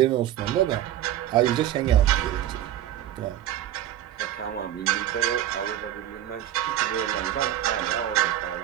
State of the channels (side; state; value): left; quieter; 12.2 dB